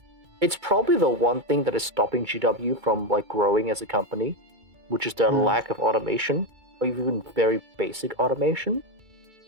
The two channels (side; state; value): left; late; 2.2 ms